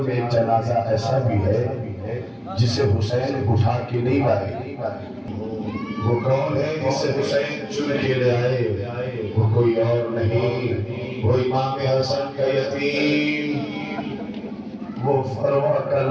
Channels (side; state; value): both; identical; correlation 1.00